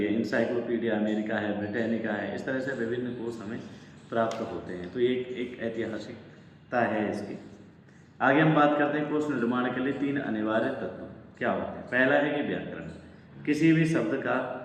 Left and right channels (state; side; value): identical; both; correlation 1.00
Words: है, इंसाइक्लोपीडिया अमेरिका है, ब्रिटानिका है, इस तरह से विभिन्न कोश हमें प्राप्त होते हैं। तो ये एक ऐतिहासिकता है इसकी। आगे हम बात करते हैं कोश निर्माण के लिए 3 अनिवार्य तत्व क्या होते हैं। पहला है कि व्याकरण, किसी भी शब्द का